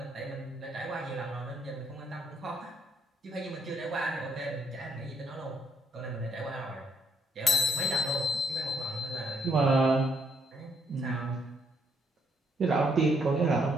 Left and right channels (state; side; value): normal; both; correlation 0.71